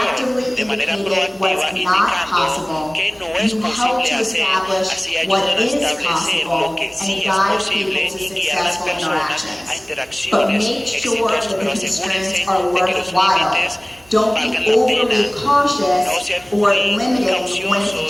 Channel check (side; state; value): right; noise; hum, 28 dB below the sound